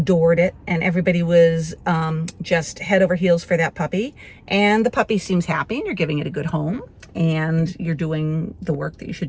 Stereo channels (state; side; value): identical; both; correlation 1.00